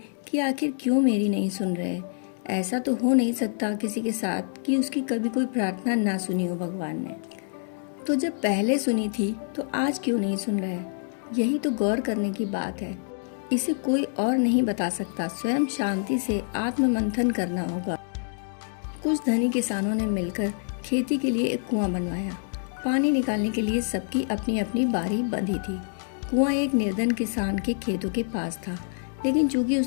कि आखिर क्यों मेरी नहीं सुन रहे। ऐसा तो हो नहीं सकता किसी के साथ कि उसकी कभी कोई प्रार्थना ना सुनी हो भगवान ने। तो जब पहले सुनी थी तो आज क्यों नहीं सुन रहे? यही तो गौर करने की बात है। इसे कोई और नहीं बता सकता, स्वयं शांति से आत्म मंथन करना होगा। कुछ धनी किसानों ने मिलकर खेती के लिए एक कुआं बनवाया। पानी निकालने के लिए सबकी अपनी अपनी बारी बंधी थी। कुआं एक निर्धन किसान के खेतों के पास था, लेकिन चूंकि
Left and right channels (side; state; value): right; silent; digital silence